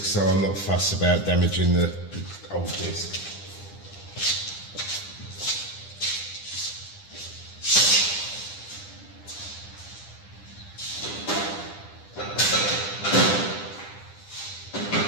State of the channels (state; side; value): late; right; 10 ms